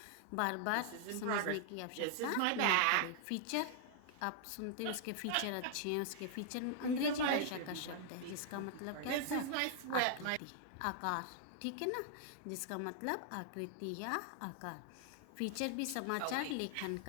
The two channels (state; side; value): different; both; correlation -0.01